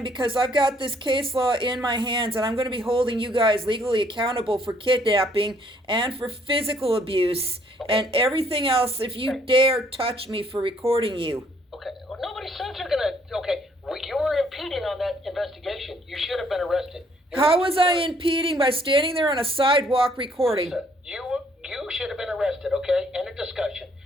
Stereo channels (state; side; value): normal; both; correlation 0.65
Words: because I've got this case law in my hands and I'm going to be holding you guys legally accountable for kidnapping and for physical abuse and everything else if you dare touch me for recording you. Okay, well, nobody says you're gonna... Okay, we you were impeding on that investigation. You should have been arrested. How was I impeding by standing there on a sidewalk recording? You should have been arrested, okay? End of discussion.